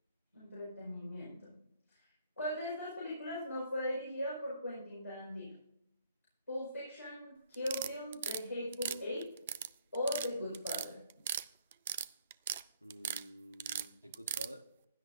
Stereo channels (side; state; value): both; inverted; correlation -0.64